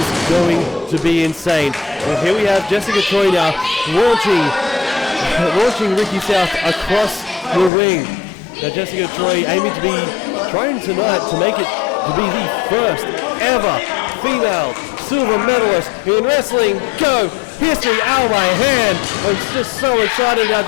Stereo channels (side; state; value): right; drops out; at 7.7 s